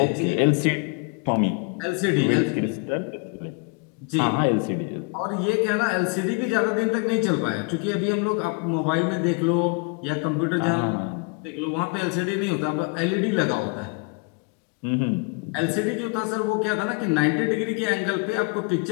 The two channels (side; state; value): right; quieter; 33.1 dB